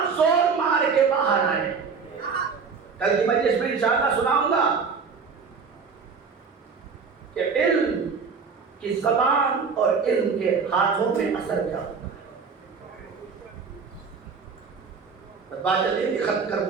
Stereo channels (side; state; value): left; quieter; 5.4 dB